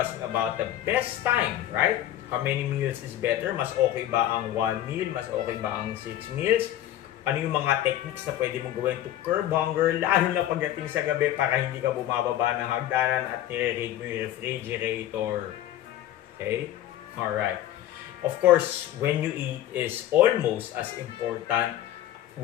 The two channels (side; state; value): right; quieter; 12.7 dB